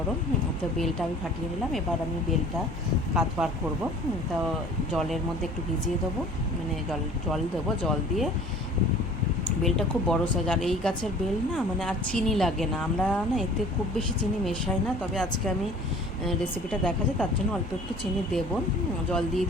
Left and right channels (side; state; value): both; normal; correlation 0.48